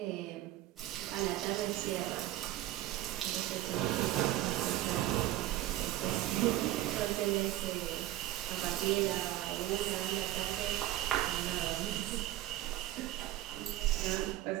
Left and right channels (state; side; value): quieter; left; 14.9 dB